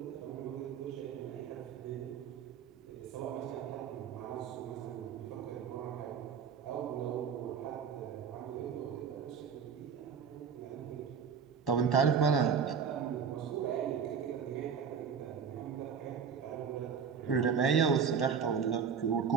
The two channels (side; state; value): left; quieter; 6.8 dB